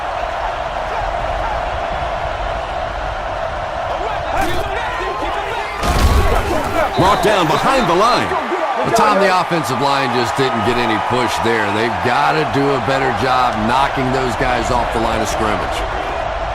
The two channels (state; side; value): identical; both; correlation 1.00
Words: Brought down behind the line. The time the offensive line just didn't get any push there. They've got to do a better job knocking those guys off the line of scrimmage.